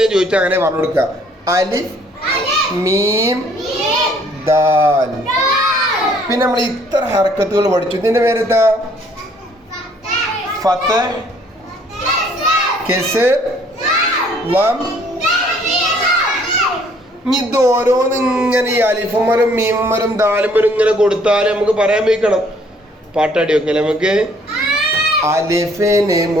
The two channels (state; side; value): normal; both; correlation 0.62